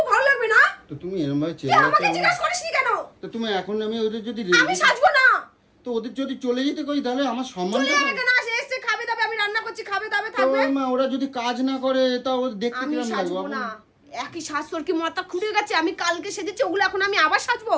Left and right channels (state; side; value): identical; both; correlation 1.00